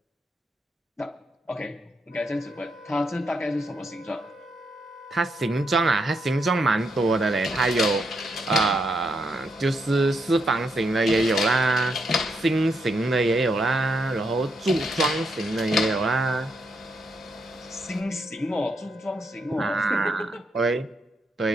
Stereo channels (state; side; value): normal; both; correlation 0.79